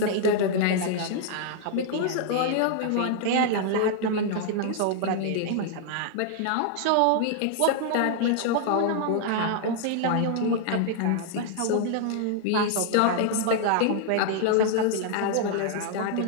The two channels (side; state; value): both; different; correlation -0.01